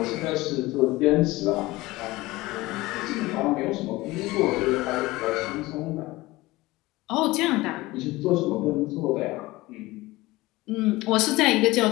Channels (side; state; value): right; quieter; 19.8 dB